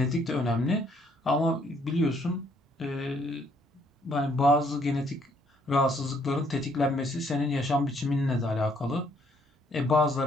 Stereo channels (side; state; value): both; normal; correlation 0.67